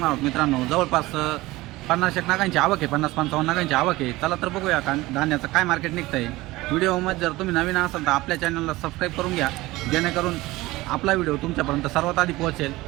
आहोत मित्रांनो। जवळपास 50 नागांची आवक आहे, 50-55 नागांची आवक आहे। चला तर बघूया धान्याचं काय मार्केट निघतं आहे। व्हिडिओमध्ये जर तुम्ही नवीन असाल तर आपल्या चॅनलला सबस्क्राईब करून घ्या, जेणेकरून आपला व्हिडिओ तुमच्यापर्यंत सर्वात आधी पोहोचेल।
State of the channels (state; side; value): quieter; left; 19.3 dB